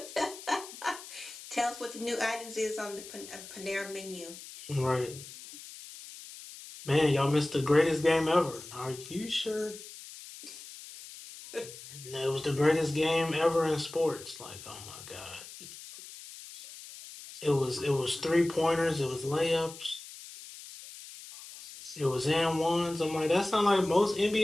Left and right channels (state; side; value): noise; left; hiss, 15 dB below the sound